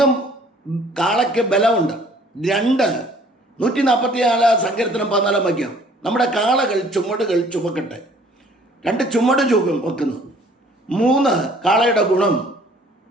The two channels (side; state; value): both; normal; correlation 0.56